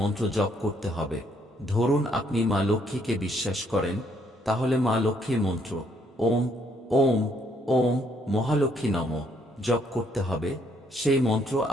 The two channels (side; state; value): both; normal; correlation 0.69